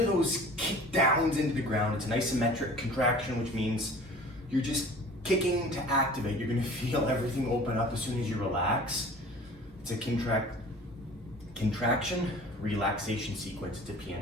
those kick downs into the ground. It's an isometric contraction, which means you're just kicking to activate. You're going to feel everything open up as soon as you relax. It's a contraction, relaxation sequence. It's a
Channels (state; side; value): normal; both; correlation 0.44